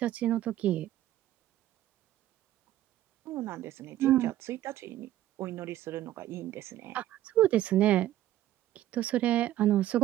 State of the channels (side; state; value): left; quieter; 13.5 dB